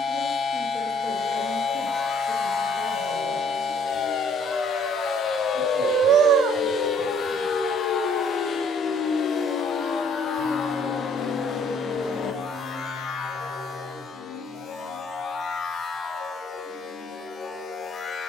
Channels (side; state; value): both; normal; correlation 0.61